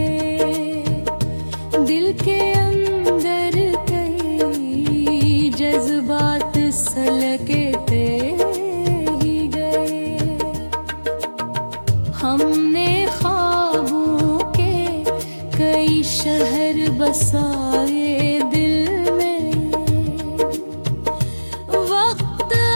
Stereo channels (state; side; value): inverted; both; correlation -1.00